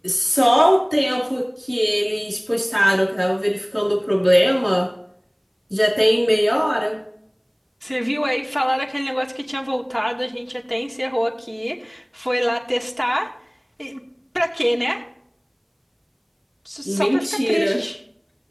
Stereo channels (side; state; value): both; identical; correlation 1.00